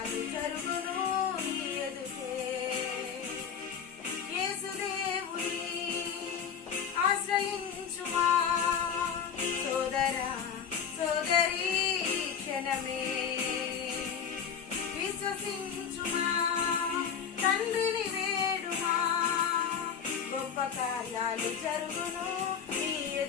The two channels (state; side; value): quieter; right; 7.3 dB